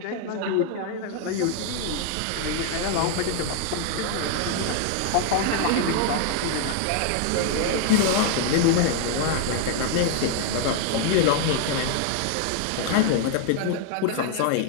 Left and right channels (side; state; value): both; different; correlation 0.00